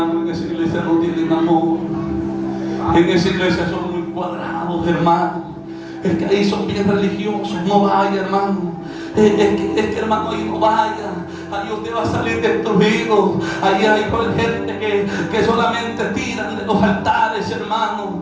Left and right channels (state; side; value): identical; both; correlation 1.00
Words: en esa iglesia no tienen amor. En esa iglesia son muy cuadrados, hermano. Es que ahí son bien religiosos. No vaya, hermano. Es que hermano, ahí no vaya. Ahí usted va a salir destruido. Ahí hay gente que solamente tiran de los altares, hermano.